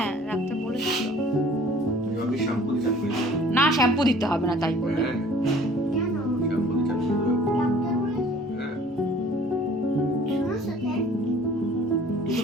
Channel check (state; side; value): normal; both; correlation 0.52